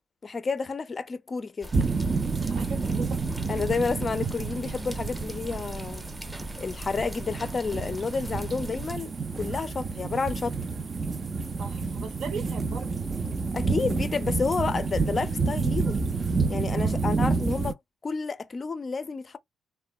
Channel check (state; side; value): normal; both; correlation 0.81